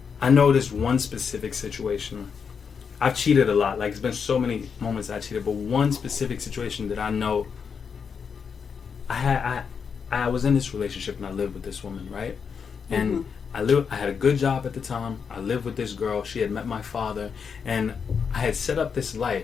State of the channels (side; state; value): right; quieter; 6.3 dB